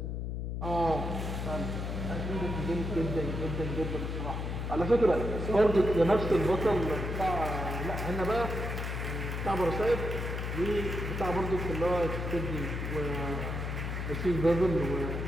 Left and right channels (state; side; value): noise; left; hum, 3 dB below the sound